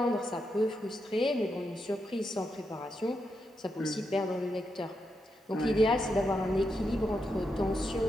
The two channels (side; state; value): both; normal; correlation 0.84